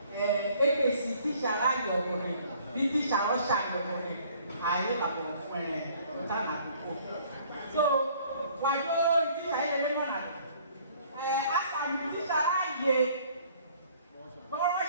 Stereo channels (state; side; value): inverted; both; correlation -0.57